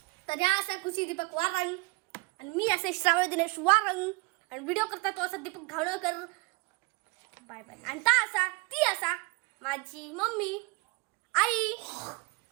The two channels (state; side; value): quieter; left; 27.5 dB